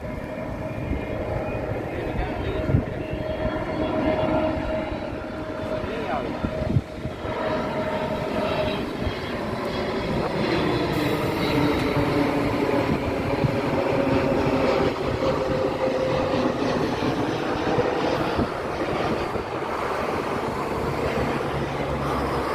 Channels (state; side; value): identical; both; correlation 1.00